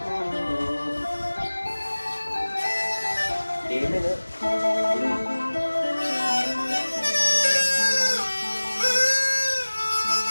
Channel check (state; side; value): inverted; both; correlation -1.00